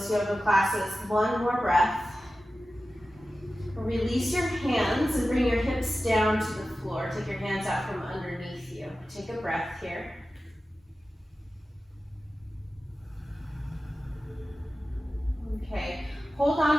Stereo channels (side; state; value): both; normal; correlation 0.94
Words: yoga classes. One more breath. Release your hands and bring your hips down to the floor. Take your hands out from underneath you. Take a breath here. Okay, hold